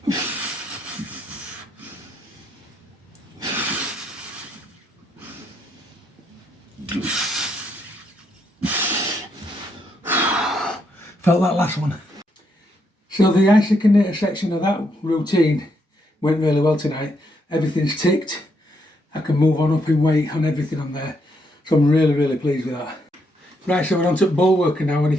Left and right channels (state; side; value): normal; both; correlation 0.76